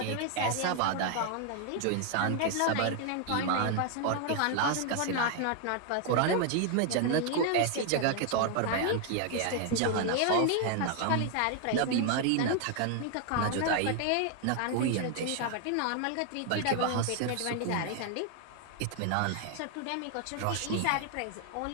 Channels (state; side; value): different; both; correlation 0.00